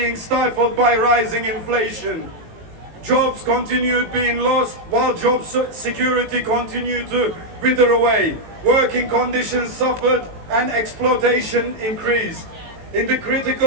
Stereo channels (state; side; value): late; left; 18 ms